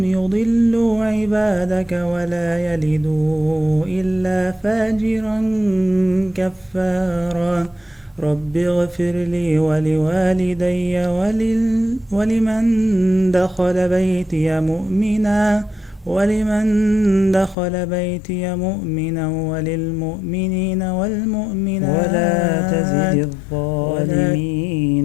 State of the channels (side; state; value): right; drops out; at 17.6 s